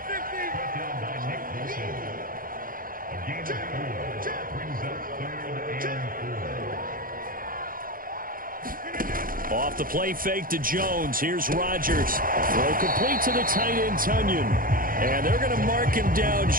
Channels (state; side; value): late; left; 0.41 ms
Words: Off the play fake to Jones. Here's Rodgers. Throw complete to the tight end, Tunyon. And they're going to mark him down